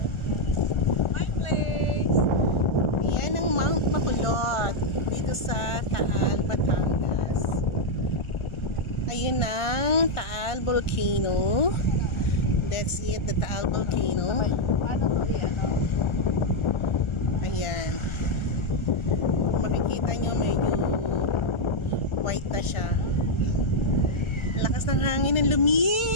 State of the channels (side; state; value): right; late; 1.4 ms